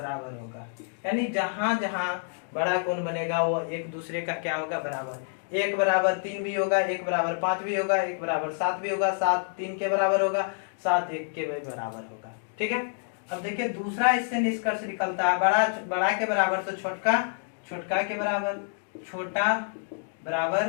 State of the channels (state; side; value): silent; right; digital silence